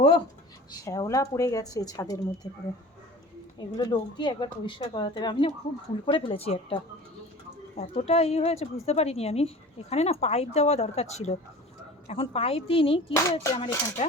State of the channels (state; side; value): normal; both; correlation 0.40